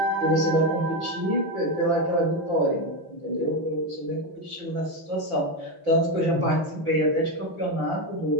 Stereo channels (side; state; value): left; late; 5.8 ms